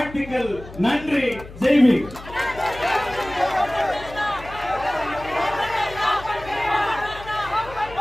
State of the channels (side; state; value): left; noise; hum, 16 dB below the sound